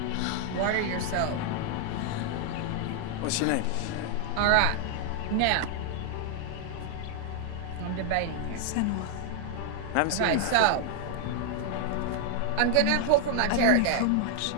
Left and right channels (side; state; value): both; different; correlation 0.00